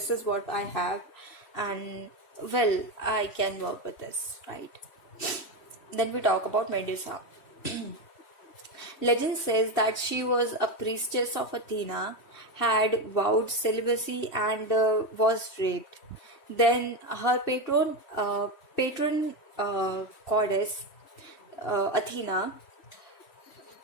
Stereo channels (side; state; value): right; late; 3.1 ms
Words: is what I have, and well, I can work with this, right? Then we talk about Medusa. Legend says that she was a priestess of Athena, had vowed celibacy, and was raped. Then her patron goddess Athena,